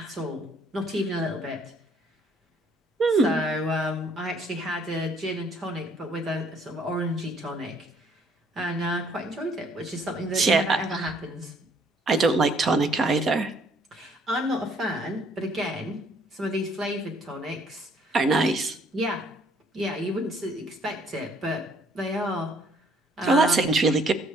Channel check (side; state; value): both; normal; correlation 0.63